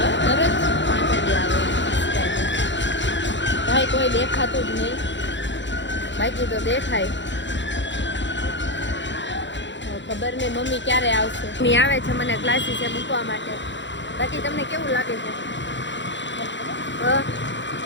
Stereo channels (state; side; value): late; right; 0.53 ms